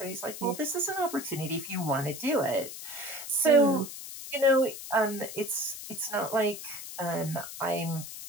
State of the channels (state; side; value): noise; left; hiss, 10 dB below the sound